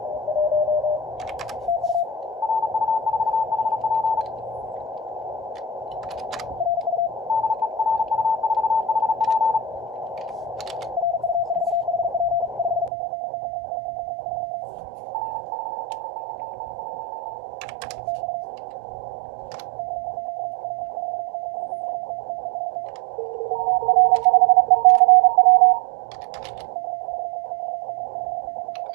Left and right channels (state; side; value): drops out; left; at 12.9 s